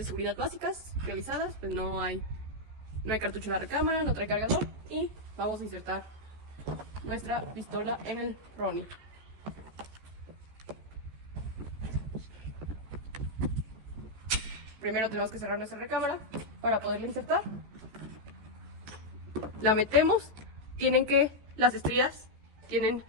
seguridad básicas realizadas, pues no hay cartucho en la recámara, no trae cargador y vamos a insertar nuestra pistola en el Ronnie. Primero tenemos que cerrar nuestra recámara para poderla insertar. La metemos, las estrías tienen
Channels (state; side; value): late; left; 14 ms